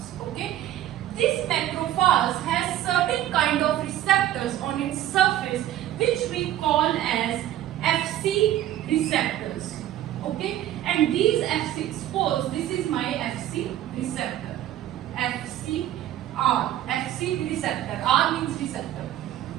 okay. This macrophage has certain kind of receptors on its surface which we call as Fc receptors, okay, and these Fc, suppose this is my Fc receptor, Fc receptor, R means receptor.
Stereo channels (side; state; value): left; quieter; 12.7 dB